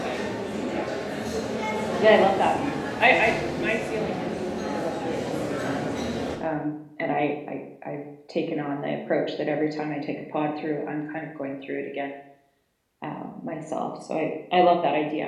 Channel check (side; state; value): both; identical; correlation 1.00